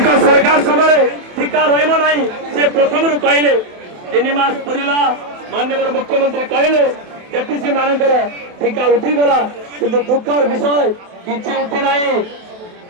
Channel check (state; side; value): late; left; 28 ms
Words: ସରକାର ସମୟରେ ଟିକା ରହିବ ନାହିଁ ସେ ପ୍ରଥମରୁ କହିଲେ। 3 ମାସ ପୁରିଲା, ମାନ୍ୟବର ମୁଖ୍ୟମନ୍ତ୍ରୀ କହିଲେ ଏଟିସି ମାନଙ୍କର ଟିକା ଉଠିଗଲା, କିନ୍ତୁ ଦୁଃଖର ବିଷୟ କିଛି ଉଠି ନାହିଁ।